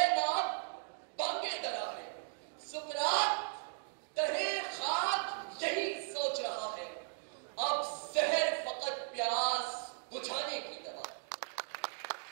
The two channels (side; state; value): left; silent; 53 dB below the other